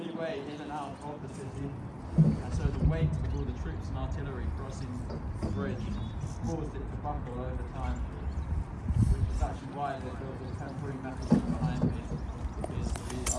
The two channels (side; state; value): both; identical; correlation 1.00